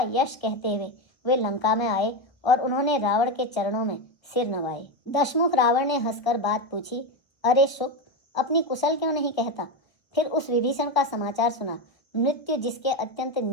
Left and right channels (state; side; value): late; right; 1.3 ms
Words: यश कहते हुए वे लंका में आए और उन्होंने रावण के चरणों में सिर नवाए। दशमुख रावण ने हंसकर बात पूछी, अरे शुक, अपनी कुशल क्यों नहीं कहता? फिर उस विभीषण का समाचार सुना, मृत्यु जिसके अत्यंत